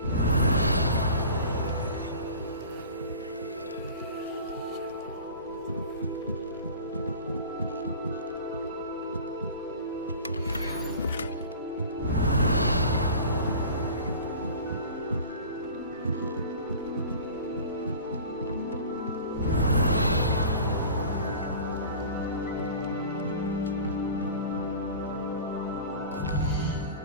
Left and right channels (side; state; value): both; inverted; correlation -0.40